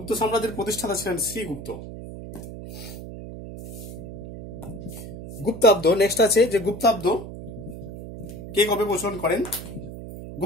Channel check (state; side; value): noise; right; hum, 11 dB below the sound